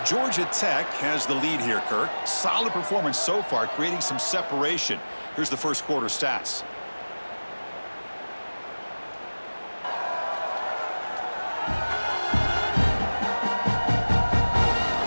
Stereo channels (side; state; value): both; inverted; correlation -1.00